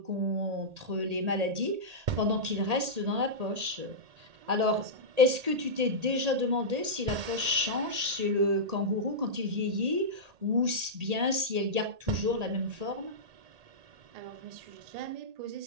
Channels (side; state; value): left; late; 1.8 ms